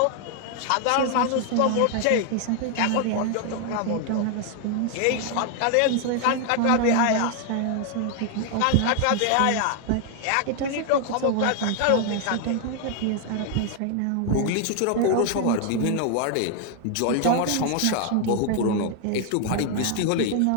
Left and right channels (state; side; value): different; both; correlation 0.00